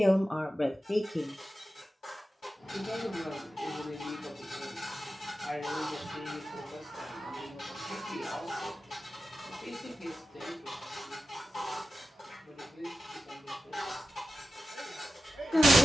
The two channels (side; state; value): both; normal; correlation 0.93